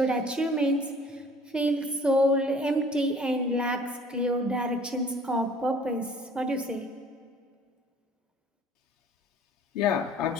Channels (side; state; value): both; normal; correlation 0.51